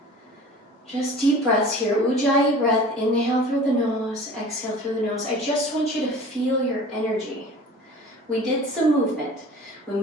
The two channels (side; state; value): both; normal; correlation 0.42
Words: Just deep breaths here. Ujjayi breath. Inhale through the nose, exhale through the nose. I just want you to feel your energy. We did some movement. We